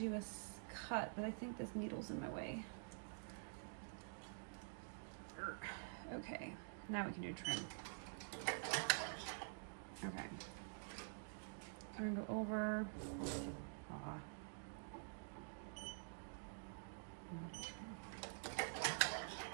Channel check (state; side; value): silent; left; digital silence